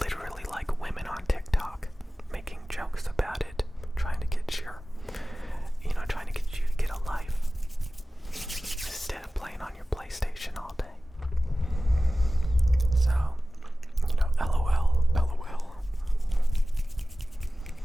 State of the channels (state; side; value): normal; both; correlation 0.96